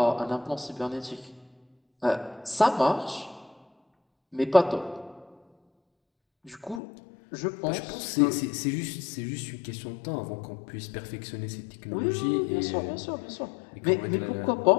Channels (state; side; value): drops out; right; at 6.8 s